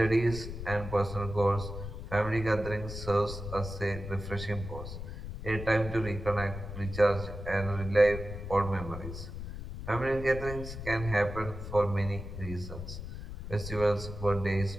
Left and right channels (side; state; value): left; noise; rumble, 8 dB below the sound